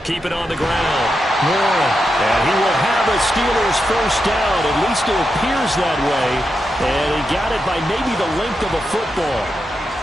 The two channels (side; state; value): both; normal; correlation 0.86